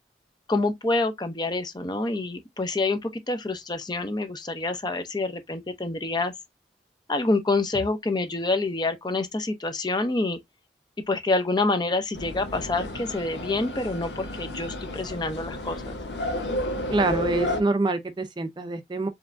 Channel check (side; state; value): both; normal; correlation 0.51